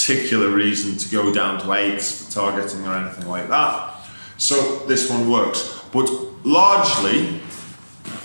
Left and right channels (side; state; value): both; inverted; correlation -1.00